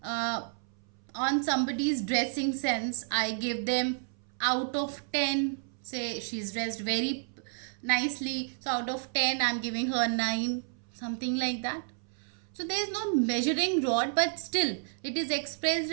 on somebody's dressing sense, I give them out of 10. Say, she's dressed very nicely. So, out of 10, I'm giving her 9. Something like that. So, there is no measuring rod, but still, it is expressed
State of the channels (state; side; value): silent; left; 57 dB below the other